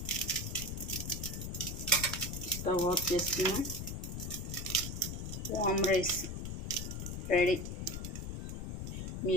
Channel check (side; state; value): left; noise; rumble, 5 dB below the sound